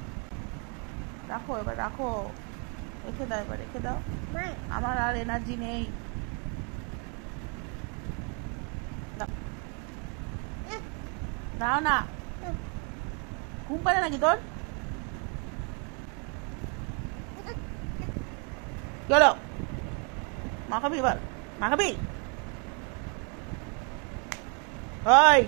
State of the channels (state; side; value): quieter; left; 37.0 dB